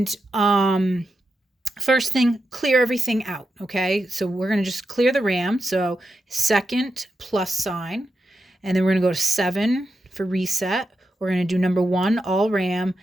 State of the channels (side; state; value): both; normal; correlation 0.87